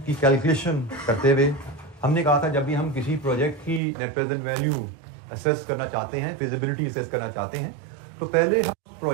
की कैलकुलेशन करते हुए हमने कहा था जब भी हम किसी प्रोजेक्ट की नेट प्रेजेंट वैल्यू असेस करना चाहते हैं, फिजिबिलिटी असेस करना चाहते हैं, तो पहले हम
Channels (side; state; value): left; drops out; at 3.8 s